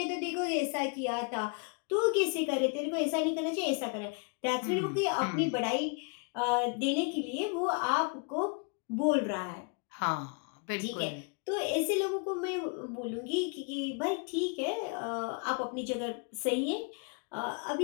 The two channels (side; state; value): right; quieter; 35.3 dB